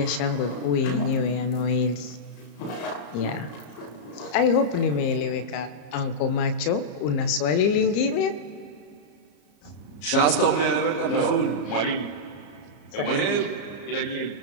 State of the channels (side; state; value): right; late; 34 ms